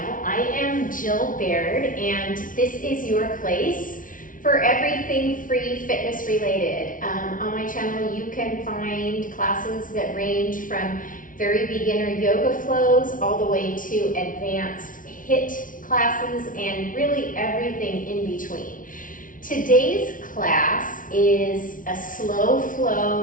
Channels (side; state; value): right; late; 0.38 ms